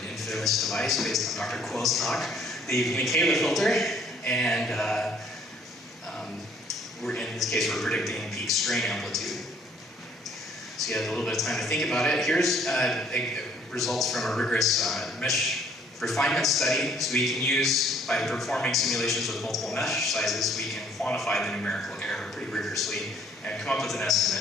infamous device based on Dr. Kuo's talk, the Mikela filter, and in this case, we're predicting peak strain amplitude. So you have a little bit of time to think about it. Here's results from a rigorous mesh refinement study. So we can use, by performing simulations with multiple mesh sizes, we can quantify the numerical error pretty rigorously and come up with an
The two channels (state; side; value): normal; both; correlation 0.61